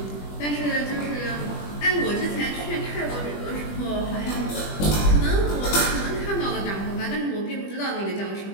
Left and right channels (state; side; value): late; right; 20 ms